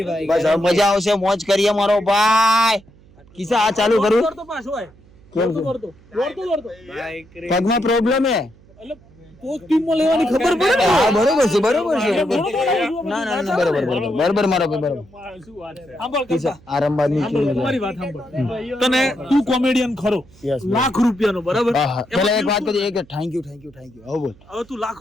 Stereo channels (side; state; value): right; noise; hum, 26 dB below the sound